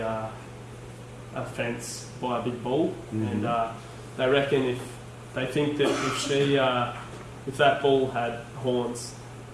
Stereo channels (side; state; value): both; identical; correlation 1.00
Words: fence by a big bull, and they reckon they think that if that bull had horns,